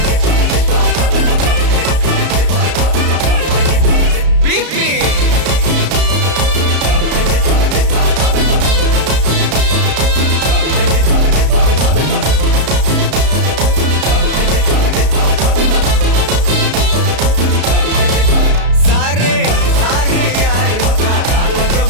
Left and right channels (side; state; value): left; late; 33 ms